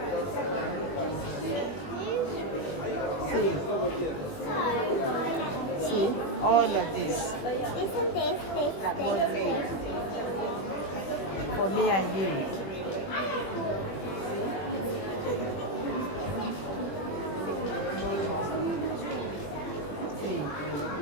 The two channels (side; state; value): right; late; 21 ms